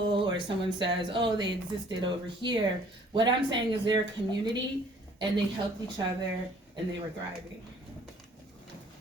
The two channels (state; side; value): normal; both; correlation 0.57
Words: or someone says, oh, they existed over here. What I'm saying is they're a community and they helped each other and they were thriving.